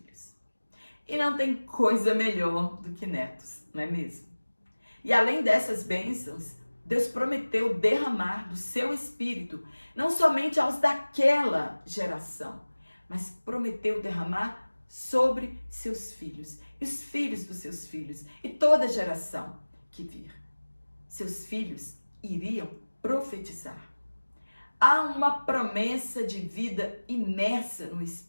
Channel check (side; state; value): both; inverted; correlation -1.00